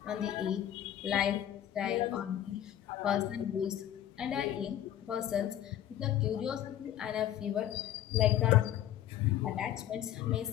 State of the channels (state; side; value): quieter; right; 11.6 dB